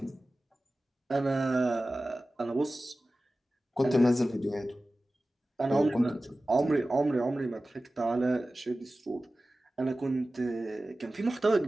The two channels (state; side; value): normal; both; correlation 0.96